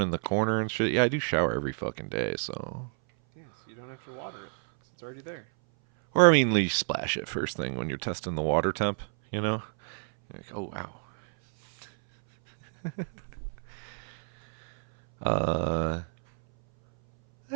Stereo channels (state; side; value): silent; left; 59 dB below the other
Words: in the corner and shit. Yeah, I do shower every fucking day, so. yes, you don't have to water it 'cause it's already there. Or I mean, you splash it first thing when you're testing the water temp. You know. Like, oh wow.